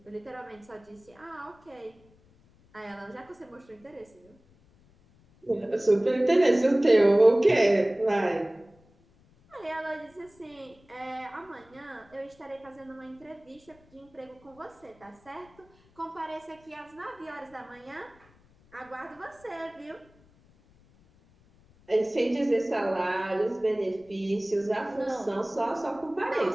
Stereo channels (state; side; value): noise; left; rumble, 29 dB below the sound